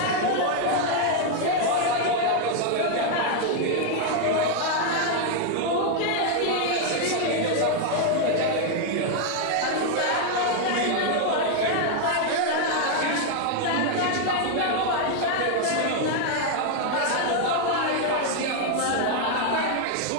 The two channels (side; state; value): both; different; correlation 0.00